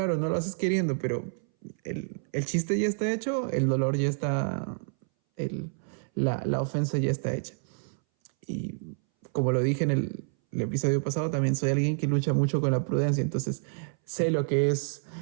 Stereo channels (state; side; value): silent; left; 59 dB below the other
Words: no lo haces queriendo, pero el chiste ya está hecho, el dolor ya está, la ofensa ya está hecha. Y como lo dije en el episodio pasado, también soy alguien que lucha mucho con la prudencia, entonces sé lo que es